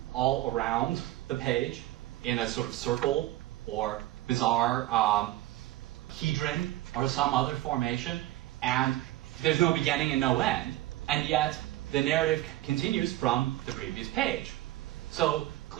all around the page in a sort of circle or bizarre hedron or some other formation, and there's no beginning and no end, and yet the narrative continues from the previous page. So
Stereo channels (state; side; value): quieter; left; 16.1 dB